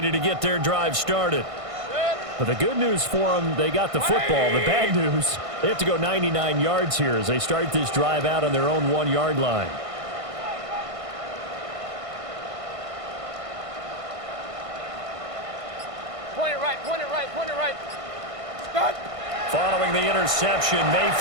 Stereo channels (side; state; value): left; late; 1.5 ms